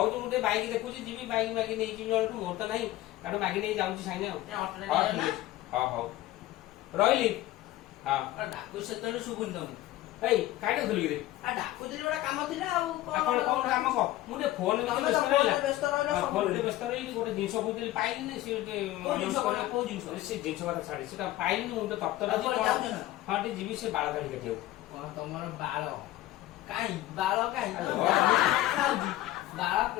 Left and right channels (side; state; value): right; quieter; 15.7 dB